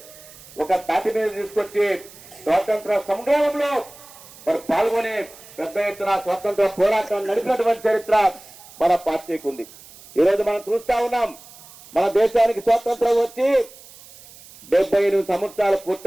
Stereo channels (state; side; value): noise; right; hiss, 21 dB below the sound